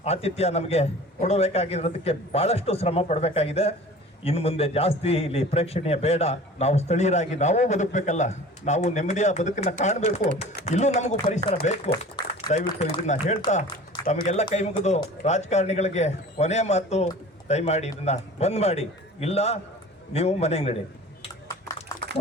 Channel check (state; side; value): normal; both; correlation 0.42